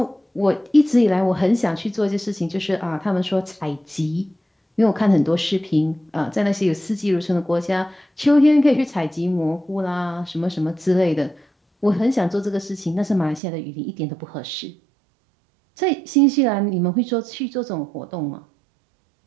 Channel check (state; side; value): drops out; left; at 13.4 s